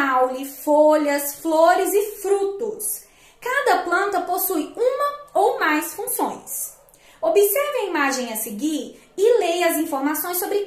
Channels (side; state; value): both; identical; correlation 1.00